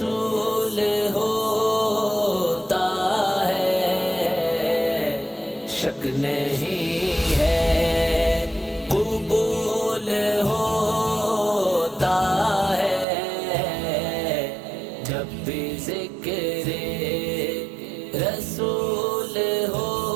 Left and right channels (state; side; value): drops out; left; at 13.1 s